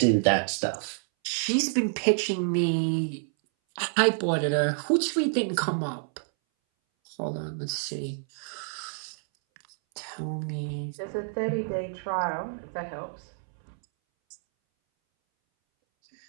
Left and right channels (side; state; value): left; silent; 59 dB below the other